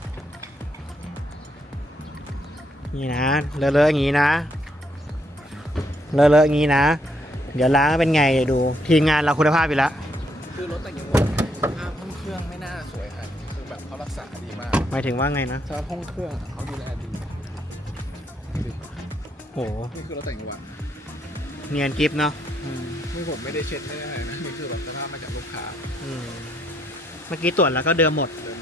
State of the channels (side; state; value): both; normal; correlation 0.74